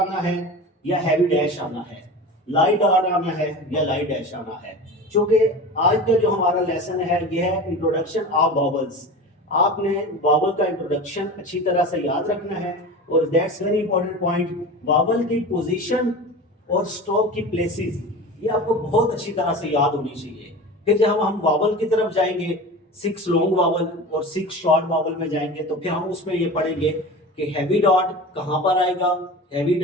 है या हैवी डैश आना है, लाइट डॉट आना है या लाइट डैश आना है, क्योंकि आज का जो हमारा लेसन है यह है इंट्रोडक्शन ऑफ वावल्स। आपने वावल का इंट्रोडक्शन अच्छी तरह से याद रखना है, और that's very important point, vowel की पोजीशन और स्ट्रोक की प्लेसेस ये आपको बहुत अच्छी तरह से याद होनी चाहिए। फिर जब हम वावल की तरफ जाएंगे, 6 लॉन्ग वावल और 6 शॉर्ट वावल में जाएंगे, तो फिर हम उसमें ये पढ़ेंगे कि हैवी डॉट कहां पर आएगा, हैवी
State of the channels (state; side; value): normal; both; correlation 0.32